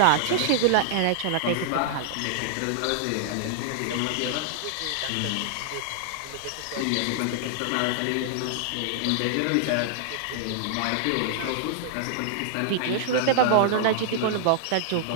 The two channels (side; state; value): both; different; correlation -0.01